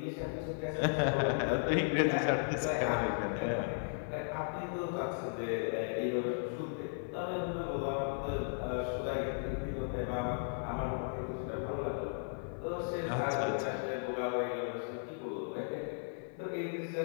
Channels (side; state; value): right; silent; 54 dB below the other